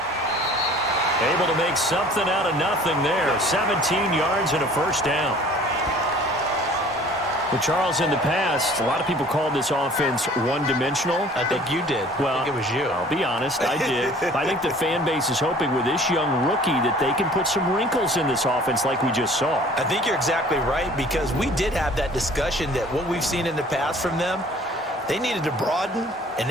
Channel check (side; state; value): both; normal; correlation 0.50